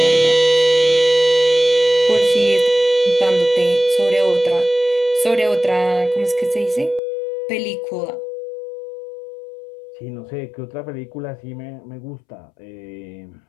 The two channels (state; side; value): drops out; right; at 7.0 s